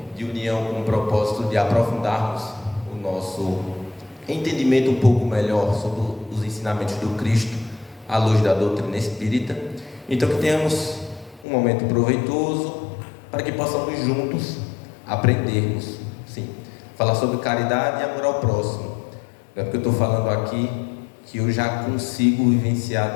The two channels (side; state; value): right; drops out; at 11.5 s